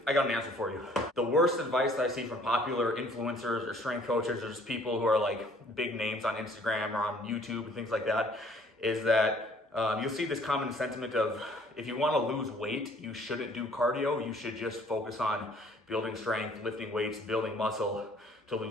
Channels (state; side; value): normal; both; correlation 0.58